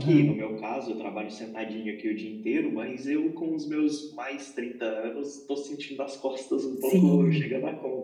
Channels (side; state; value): both; identical; correlation 1.00